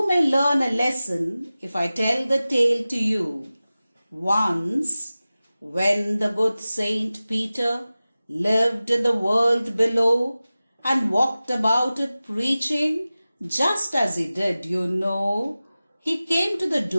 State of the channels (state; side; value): inverted; both; correlation -0.96